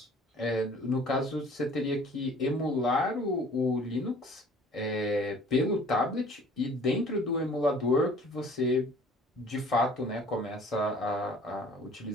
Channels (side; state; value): both; normal; correlation 0.51